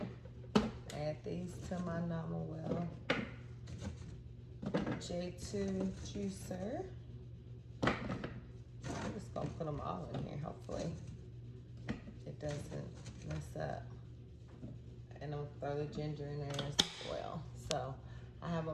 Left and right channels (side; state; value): both; identical; correlation 1.00